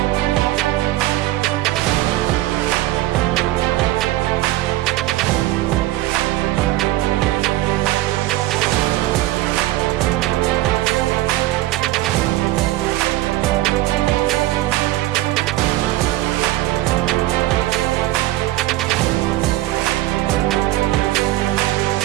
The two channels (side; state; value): left; quieter; 16.5 dB